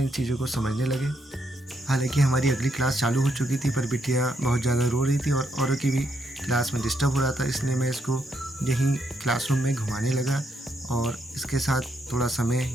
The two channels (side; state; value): both; normal; correlation 0.77